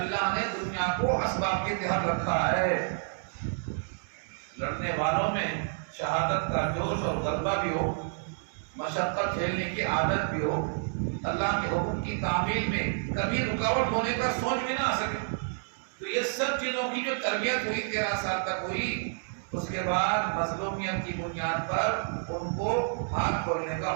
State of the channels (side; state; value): left; silent; digital silence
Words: نے دنیا کو اسباب کے تحت رکھا ہے۔ لڑنے والوں میں شہادت کا جوش اور غلبہ بھی ہو، مشقت جھیلنے کی عادت بھی ہو، اللہ کے حکم کی تعمیل میں کبھی رکاوٹ ہونے کا سوچ بھی نہ آ سکے۔ تو یہ سب چیزوں کی جو تربیت ہوئی 13 سال تک ہوئی، اس کے بعد مظلومیت کی بنیاد پر ان کو ہاتھ کھولنے کا